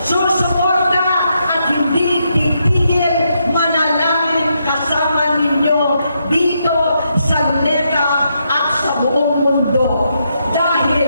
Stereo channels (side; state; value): both; inverted; correlation -0.80